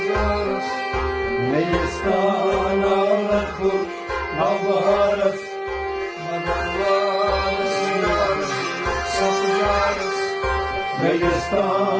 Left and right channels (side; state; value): both; identical; correlation 1.00